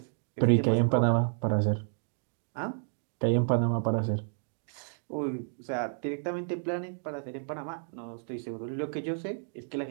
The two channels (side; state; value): left; silent; digital silence